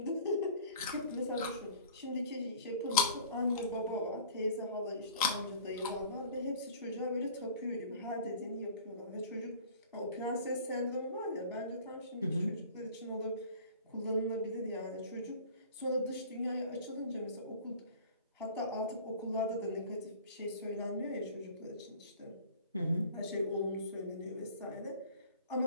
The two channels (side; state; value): both; inverted; correlation -0.45